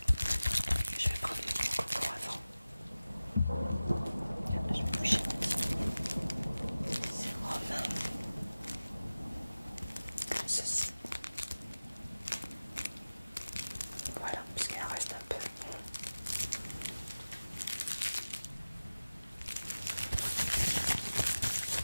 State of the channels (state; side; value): inverted; both; correlation -0.97